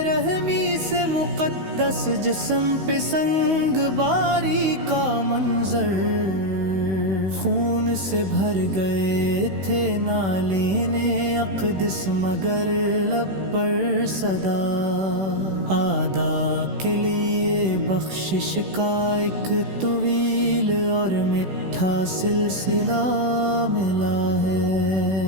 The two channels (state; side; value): late; left; 16 ms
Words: رحمی سے مقدس جسم پہ سنگ باری کا منظر خون سے بھر گئے تھے نالین اقدس مگر لب پر صدا آدا کے لیے بخشش کا ایک طویل اور میٹھا سلسلہ ملا